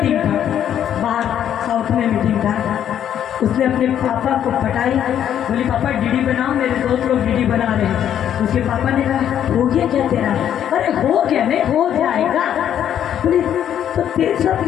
था बाहर, साउथ में मीटिंग था, उसने अपने पापा को पटाई, बोली पापा डीडी बनाओ, मेरे दोस्त लोग डीडी बना रहे हैं। उसके पापा ने कहा हो गया क्या तेरा? अरे हो गया, नहीं हो जाएगा। बोली तो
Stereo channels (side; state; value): right; quieter; 10.0 dB